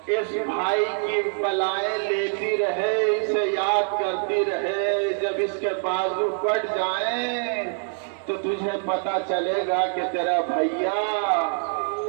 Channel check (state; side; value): silent; left; 61 dB below the other